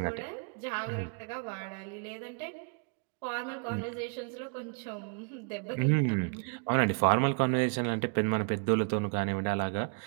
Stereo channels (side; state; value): left; quieter; 38.8 dB